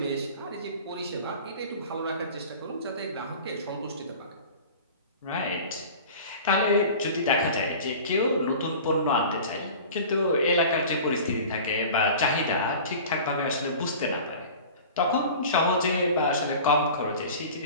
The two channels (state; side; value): inverted; both; correlation -0.39